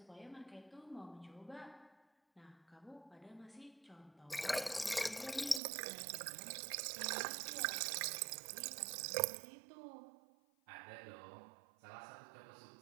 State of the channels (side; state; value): left; drops out; at 5.6 s